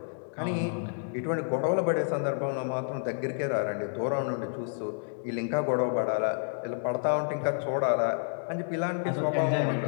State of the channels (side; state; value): right; silent; digital silence